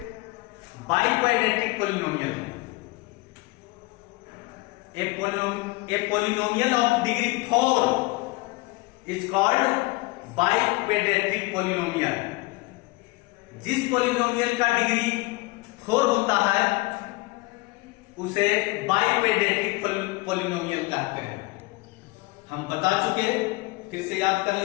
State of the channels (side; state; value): right; quieter; 23.0 dB